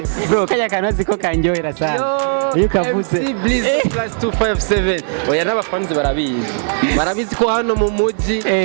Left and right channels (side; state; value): left; silent; digital silence